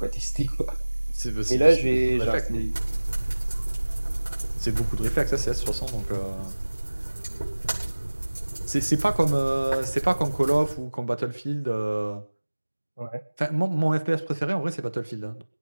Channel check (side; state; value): both; inverted; correlation -1.00